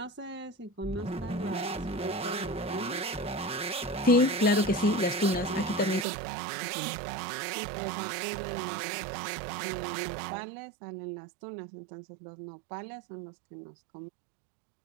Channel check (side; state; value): left; drops out; at 6.1 s